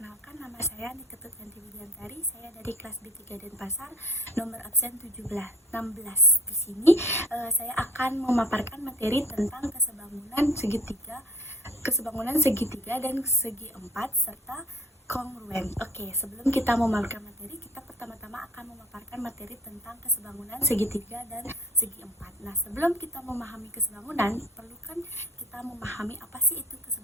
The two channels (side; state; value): both; normal; correlation 0.50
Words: nama saya Niketut Yanti Widiantari. Saya dari kelas B3 Denpasar, nomor absen 16. Di sini saya akan memaparkan materi tentang kesebangunan segitiga dan segi empat serta kongruen. Oke, sebelum kita memaparkan materi, kita pertama-tama akan memaparkan materi tentang kesebangunan segitiga dan segi empat. Nah, sebelum kita memahami kesebangunan, perlu kan kita memahami apa sih itu